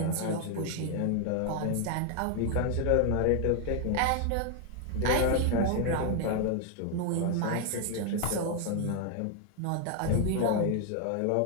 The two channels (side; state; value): both; different; correlation 0.00